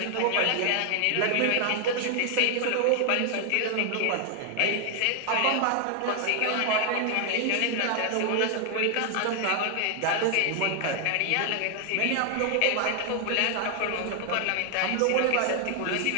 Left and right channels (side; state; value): both; different; correlation 0.00